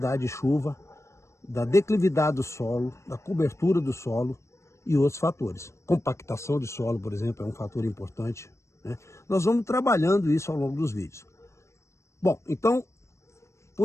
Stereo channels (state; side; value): late; right; 0.14 ms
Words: de chuva, da declividade do solo, da cobertura do solo e outros fatores. Compactação de solo, por exemplo, é um fator importante, né? Nós vamos trabalhando isso ao longo dos vídeos. Bom, então,